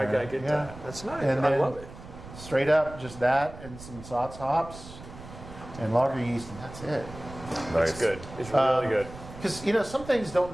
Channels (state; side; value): noise; right; rumble, 15 dB below the sound